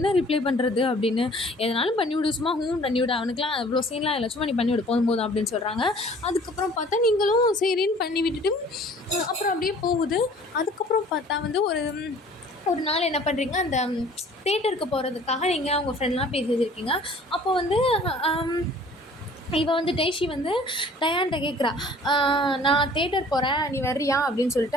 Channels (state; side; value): normal; both; correlation 0.51